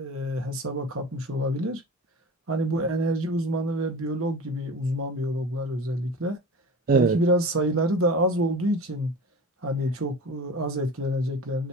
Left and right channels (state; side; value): normal; both; correlation 0.34